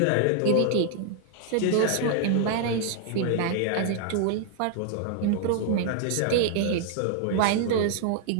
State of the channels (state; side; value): different; both; correlation 0.00